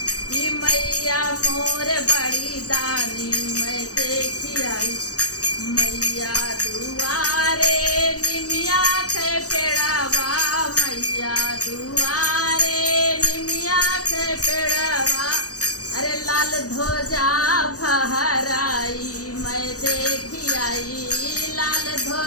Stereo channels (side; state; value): right; late; 0.66 ms